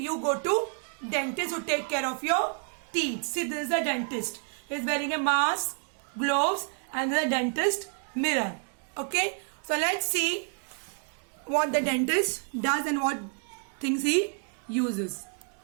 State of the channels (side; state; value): left; quieter; 39.8 dB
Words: dentist to take care of your teeth. See, this is a dentist. He is wearing a mask, gloves, and then a dentist mirror. Okay, so let's see what the dentist does and what things he uses.